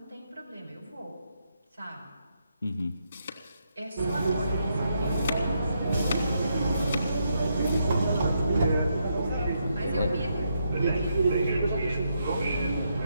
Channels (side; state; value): both; inverted; correlation -0.79